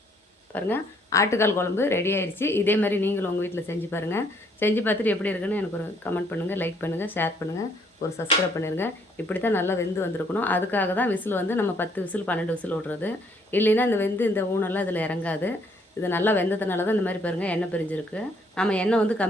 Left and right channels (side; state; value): both; normal; correlation 0.66